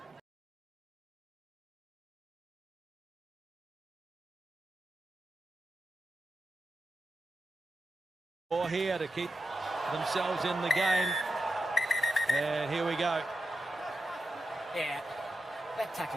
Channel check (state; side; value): normal; both; correlation 0.88